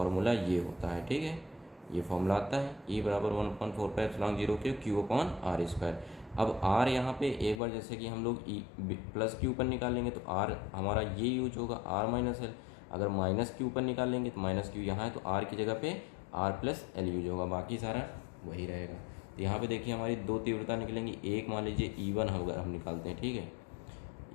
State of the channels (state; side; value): drops out; right; at 7.6 s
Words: ये होता है, ठीक है। ये फॉर्मूला आता है E = 1.45 के Q/r²। अब r यहाँ पे एक बार जैसे कि हम लोग +q पर निकालेंगे तो r हमारा ये यूज होगा r - l। अगर -q पर निकालेंगे तो -q यहाँ है तो r की जगह पे r + l यूज होगा, बाकी सारा वही रहेगा। तो यहाँ पे देखिए हमारी 2 तीव्रता निकलेंगी। एक मान लीजिए E1 अगर हम निकालते हैं, ठीक है,